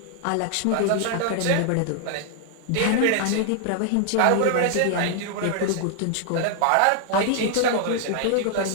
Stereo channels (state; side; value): different; both; correlation 0.00